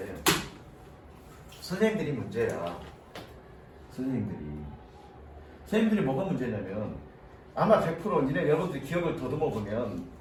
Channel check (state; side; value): identical; both; correlation 1.00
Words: 선생님들이 문제야. 선생님들이 뭐가 문제냐면 아마 100% 니네 여러분들이 기억을 더듬어 보면